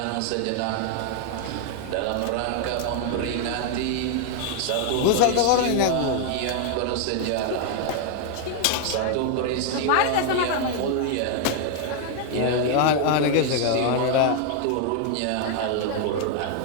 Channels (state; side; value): different; both; correlation 0.00